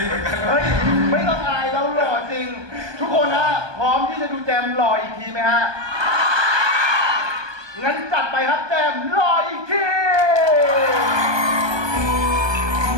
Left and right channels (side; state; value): left; late; 1.2 ms